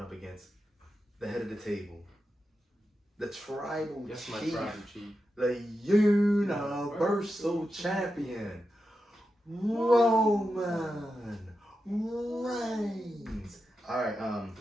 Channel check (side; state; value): both; normal; correlation 0.89